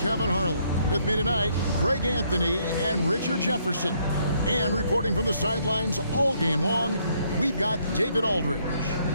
Harlan. With me tonight, Greg Anthony and Richard Jefferson. And reporting from the sidelines all game long, we've got David Aldridge.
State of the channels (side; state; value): both; inverted; correlation -0.70